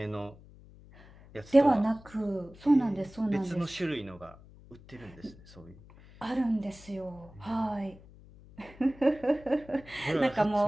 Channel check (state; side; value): noise; left; hum, 22 dB below the sound